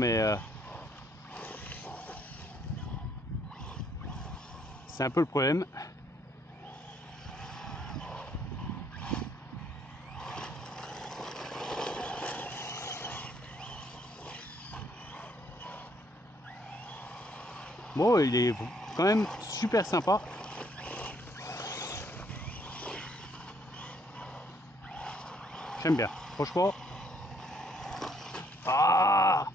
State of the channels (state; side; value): normal; both; correlation 0.68